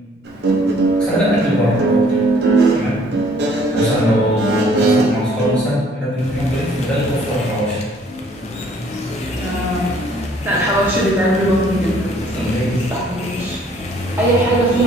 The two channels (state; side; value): normal; both; correlation 0.60